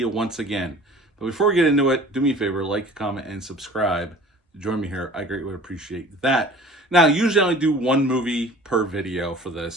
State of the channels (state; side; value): normal; both; correlation 0.45